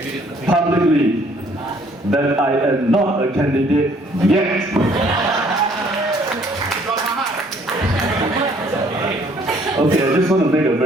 publicly that I am not a candidate yet. Okay, I just want to make a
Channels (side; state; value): both; normal; correlation 0.61